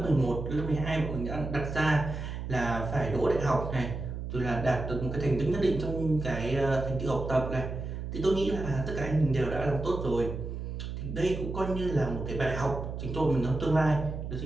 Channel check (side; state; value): right; noise; hum, 6 dB below the sound